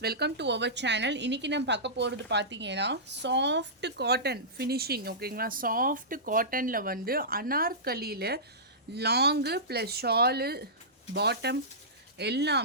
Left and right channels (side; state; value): both; normal; correlation -0.18